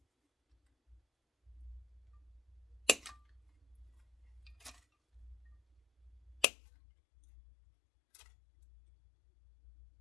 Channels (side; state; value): right; drops out; at 6.5 s